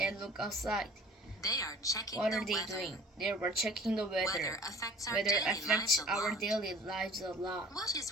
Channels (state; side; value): normal; both; correlation 0.48